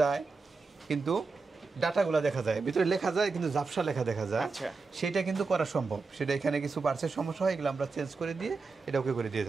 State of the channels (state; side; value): quieter; left; 4.2 dB